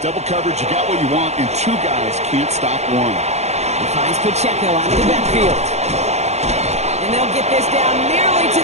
double coverage, you got what you want, and two guys can't stop one. He finds Pacheco out of the backfield. And they'll get this down nearly to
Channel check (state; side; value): late; left; 0.32 ms